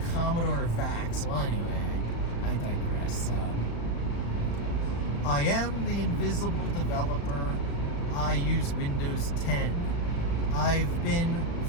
Commodore VAX. Well, anyway, I digress. I am the invisible developer. I use Windows 10. I've been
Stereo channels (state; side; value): late; right; 35 ms